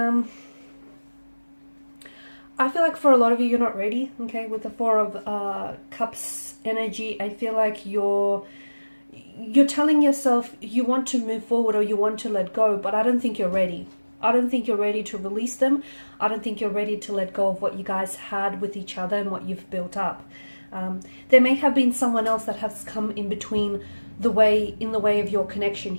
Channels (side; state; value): both; inverted; correlation -1.00